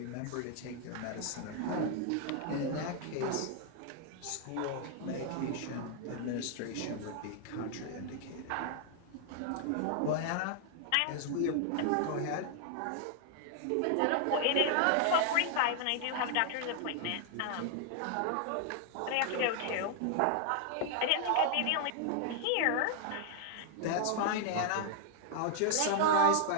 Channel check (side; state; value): both; different; correlation 0.00